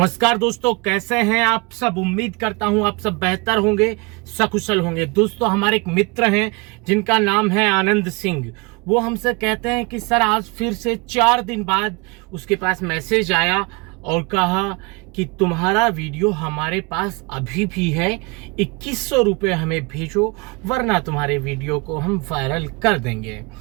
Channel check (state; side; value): quieter; left; 27.9 dB